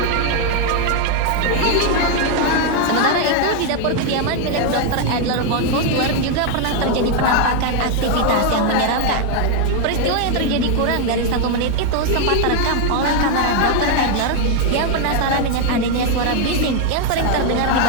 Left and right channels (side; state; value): both; different; correlation 0.01